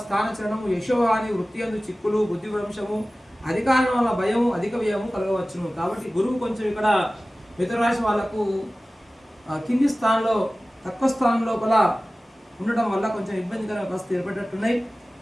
స్థానచరణము, యశోహాని, వృత్తి అందు చిక్కులు, బుద్ధి భ్రంశము, అధికారం వల్ల భయము, అధిక వ్యయము కలగవచ్చును. కాబట్టి గురువు కొంచెం ఇక్కడ మిథున రాశి వాళ్ళకు కింది స్థానంలో, తక్కువ స్థానం లోపల ఉండటం వల్ల కొంచెం ఇబ్బందికరమైన పరిస్థితి ఏర్పడేటట్టున్నాయి.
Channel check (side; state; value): both; normal; correlation 0.97